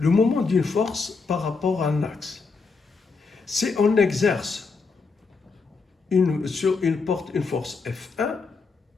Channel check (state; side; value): quieter; right; 4.5 dB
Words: le moment d'une force par rapport à un axe. Si on exerce sur une porte une force F1